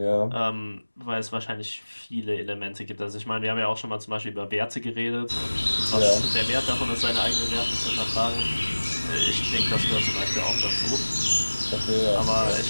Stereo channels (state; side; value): inverted; both; correlation -1.00